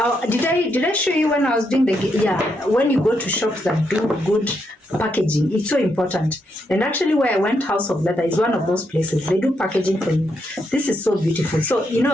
Did I show you when I was doing when you go to shops that do good packaging, it's so important. And actually where I went, House of Leather is one of those places. They do packaging for you. This is so beautiful. So you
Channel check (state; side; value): normal; both; correlation 0.79